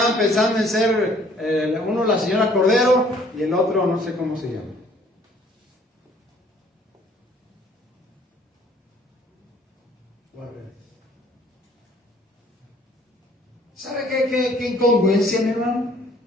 pensando en ser uno la señora Cordero y el otro no sé cómo se llama. ¿Sabe qué incongruencia, mi hermano?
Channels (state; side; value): normal; both; correlation 0.59